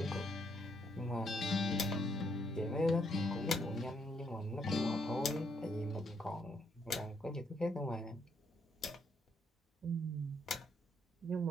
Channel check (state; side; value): normal; both; correlation 0.73